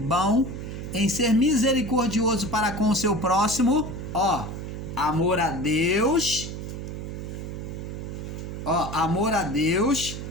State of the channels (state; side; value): noise; right; hum, 7 dB below the sound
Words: Em ser misericordioso para com o seu próximo. Amor a Deus. Amor a Deus,